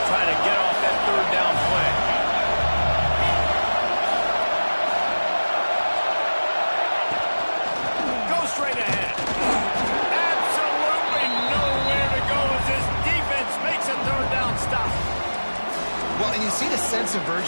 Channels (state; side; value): inverted; both; correlation -1.00